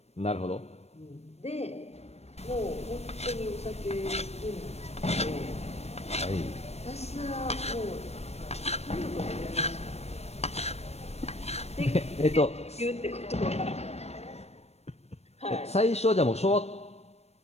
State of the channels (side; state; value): right; late; 0.31 ms